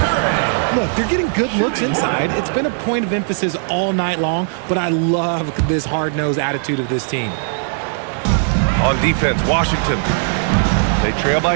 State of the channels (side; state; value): left; silent; digital silence